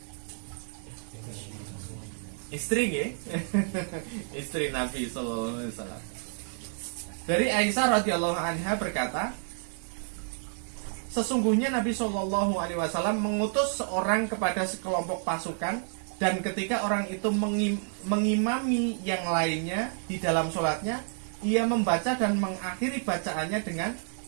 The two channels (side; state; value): left; silent; digital silence